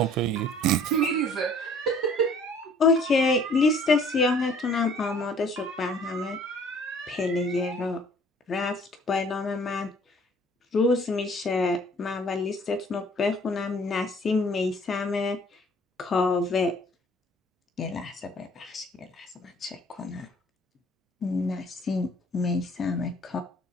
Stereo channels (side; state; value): both; normal; correlation 0.55